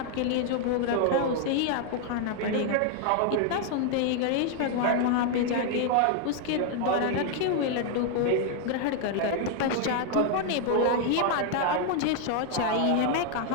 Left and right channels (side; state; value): both; different; correlation 0.00